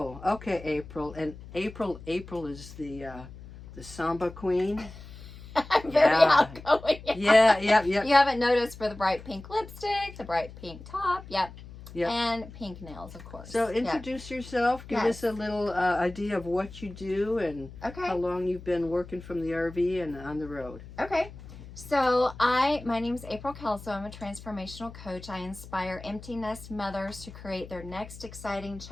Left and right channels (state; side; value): noise; left; hum, 16 dB below the sound